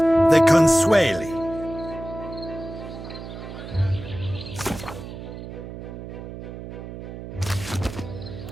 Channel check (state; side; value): noise; right; hum, 11 dB below the sound